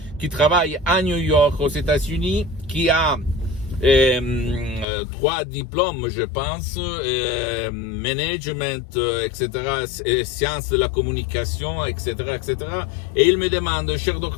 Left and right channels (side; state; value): right; drops out; at 4.9 s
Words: qui travaille à New York, aux États-Unis, qui a 3 diplômes, je pense, management, etc., sciences de la communication, etc., etc. Et il me demande, cher